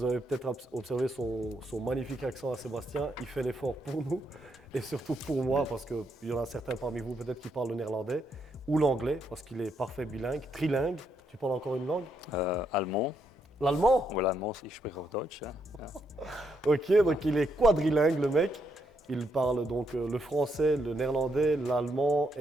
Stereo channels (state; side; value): normal; both; correlation 0.78